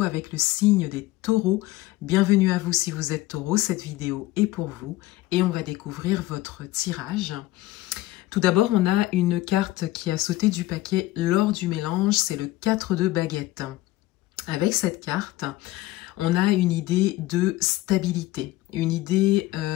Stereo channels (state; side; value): quieter; right; 17.2 dB